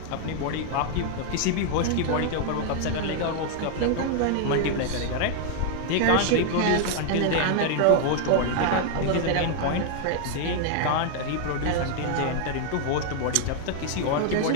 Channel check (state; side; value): different; both; correlation 0.00